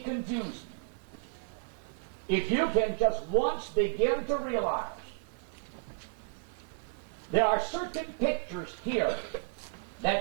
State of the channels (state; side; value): silent; left; 56 dB below the other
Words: confusing. If you can just once begin to realize there are certain pictures here